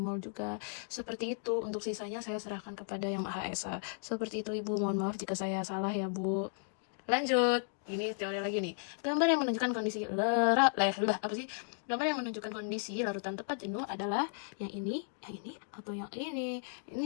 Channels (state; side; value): silent; right; digital silence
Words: juga. Seperti itu. Untuk sisanya saya serahkan kepada yang Maha Esa. Seperti itu Ibu. Mohon maaf jika saya salah ya Bu. Lanjut. Ini teori lagi nih. Gambar yang menunjukkan kondisi Gambar yang menunjukkan kondisi larutan tepat jenuh adalah yang ini, atau yang ini. Ini